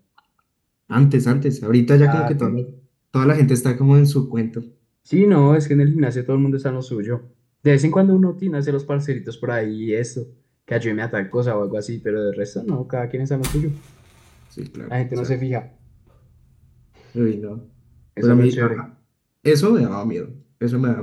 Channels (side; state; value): both; identical; correlation 1.00